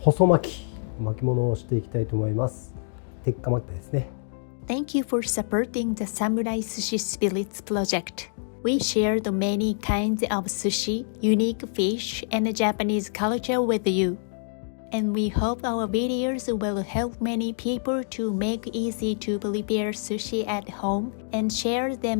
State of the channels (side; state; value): right; silent; digital silence